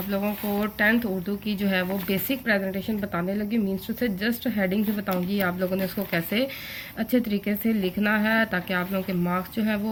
लोगों को 10th उर्दू की जो है वो बेसिक प्रेजेंटेशन बताने लगी। मीन्स टू से जस्ट हेडिंग से बताऊंगी आप लोगों ने इसको कैसे अच्छे तरीके से लिखना है ताकि आप लोगों के मार्क्स जो है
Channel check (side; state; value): both; identical; correlation 1.00